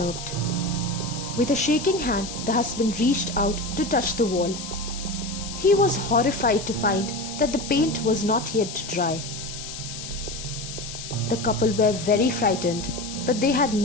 With a shaking hand, the husband reached out to touch the wall. He was horrified to find that the paint was not yet dry. The couple were very frightened, but they had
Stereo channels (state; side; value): noise; left; hiss, 10 dB below the sound